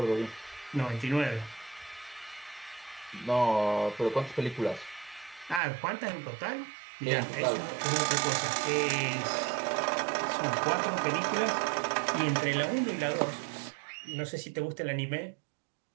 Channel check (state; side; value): drops out; left; at 5.6 s